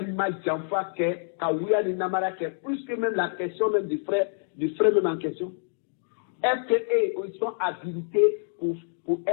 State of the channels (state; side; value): silent; right; digital silence